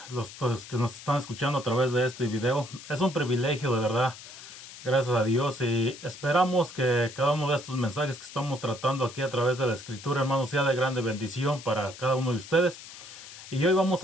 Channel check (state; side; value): noise; left; hiss, 15 dB below the sound